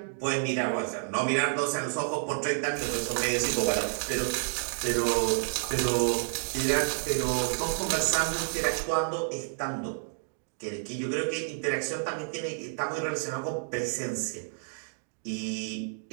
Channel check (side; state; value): left; silent; digital silence